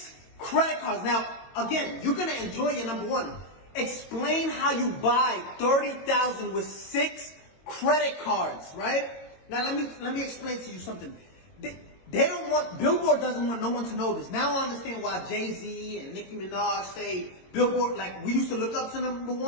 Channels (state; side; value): late; right; 22 ms